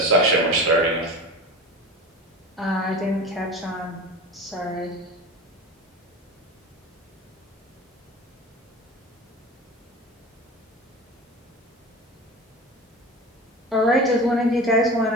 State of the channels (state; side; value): normal; both; correlation 0.32